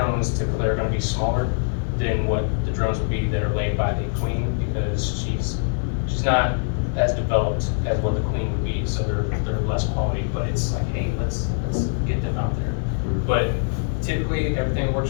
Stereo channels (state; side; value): silent; right; digital silence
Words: typically are going to be smaller than what the drones would be that are laid by the queen, because she's not as developed as what the queen would be, so they're less quality, but it's like, hey, let's get them out there. But typically, if everything